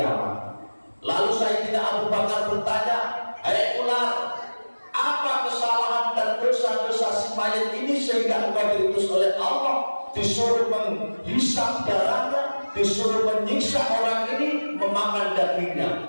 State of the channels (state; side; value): inverted; both; correlation -1.00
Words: Lalu Sayyidina Abu Bakar bertanya, hai ular, apa kesalahan dan dosa-dosa si mayat ini sehingga engkau diutus oleh Allah, disuruh menghisap darahnya, disuruh menyiksa orang ini, memakan